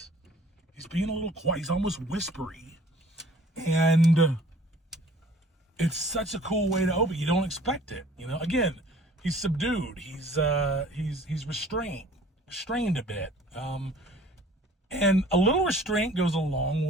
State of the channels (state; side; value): normal; both; correlation 0.52